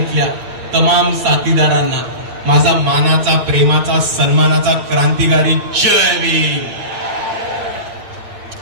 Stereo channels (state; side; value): late; left; 8.9 ms